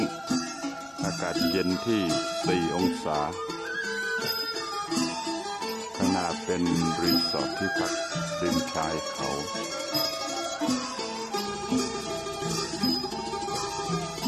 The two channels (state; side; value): identical; both; correlation 1.00